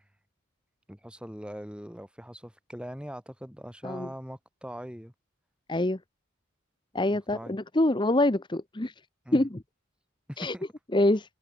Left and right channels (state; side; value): normal; both; correlation 0.71